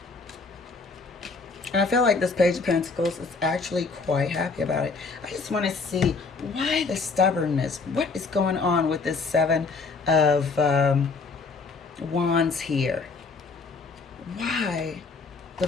And I feel like this Page of Pentacles is actually quite happy about it. I just want to see why the stubbornness. What is going on with this Seven of Wands here? Why the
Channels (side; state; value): right; quieter; 4.3 dB